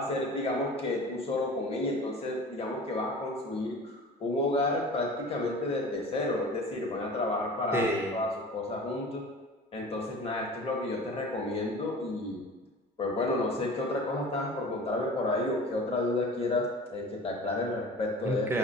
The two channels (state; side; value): normal; both; correlation 0.39